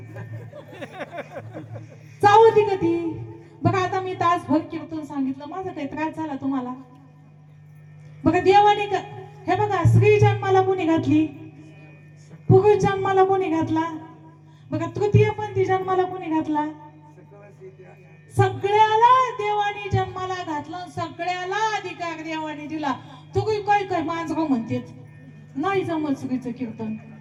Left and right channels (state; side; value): identical; both; correlation 1.00